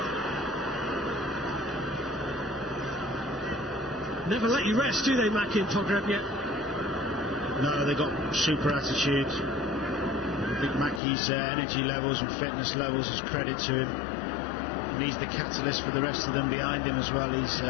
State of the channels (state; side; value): drops out; right; at 11.0 s